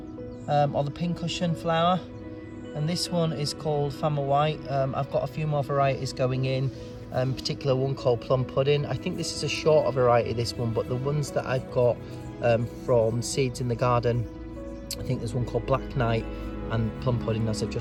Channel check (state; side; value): identical; both; correlation 1.00